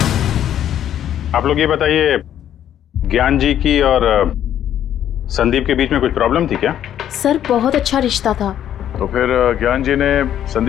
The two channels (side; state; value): right; quieter; 10.6 dB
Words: आप लोग ये बताइए, ज्ञान जी की और संदीप के बीच में कुछ प्रॉब्लम थी क्या? सर, बहुत अच्छा रिश्ता था। तो फिर ज्ञान जी ने